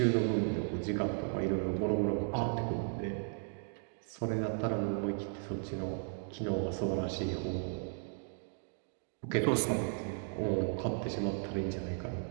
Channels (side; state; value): left; silent; 54 dB below the other